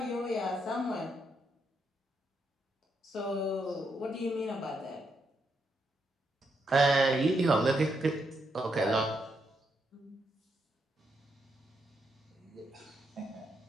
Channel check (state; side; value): normal; both; correlation 0.79